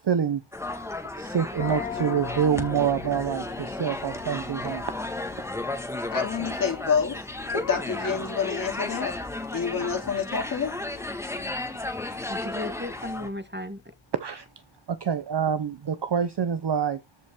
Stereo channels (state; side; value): normal; both; correlation 0.01